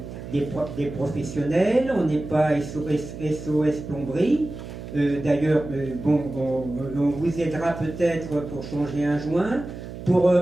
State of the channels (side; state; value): right; noise; hum, 11 dB below the sound